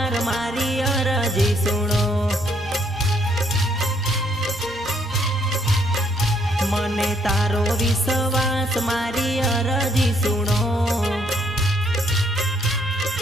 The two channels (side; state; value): both; normal; correlation 0.69